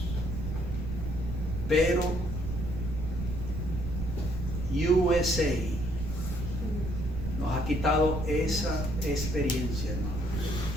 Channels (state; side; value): noise; right; rumble, 4 dB below the sound